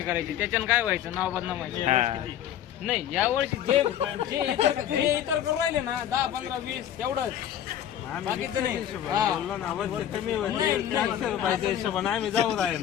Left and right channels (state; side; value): quieter; right; 10.5 dB